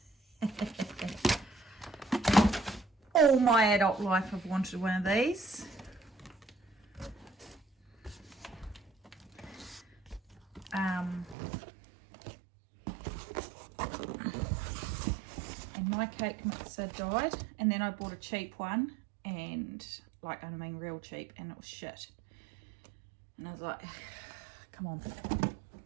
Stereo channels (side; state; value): left; drops out; at 11.4 s